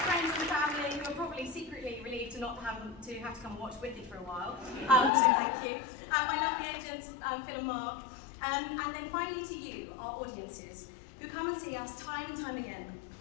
Secretly relieved to not have to come and watch Wicked for a while, so thank you. My lovely agents, Phil and Mark, and then finally to you, our audiences, who come and see us time and time again.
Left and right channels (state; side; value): drops out; right; at 5.1 s